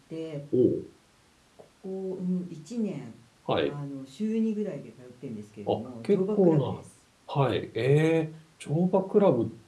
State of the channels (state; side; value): identical; both; correlation 1.00